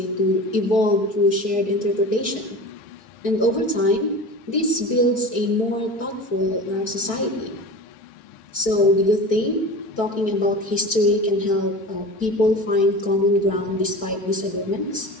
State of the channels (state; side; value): late; right; 4.6 ms